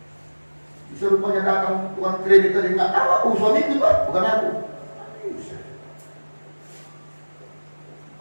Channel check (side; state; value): both; inverted; correlation -1.00